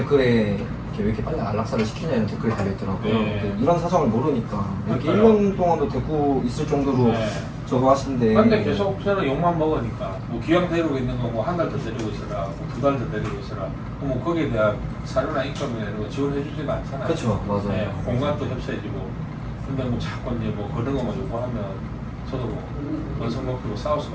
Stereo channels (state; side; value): identical; both; correlation 1.00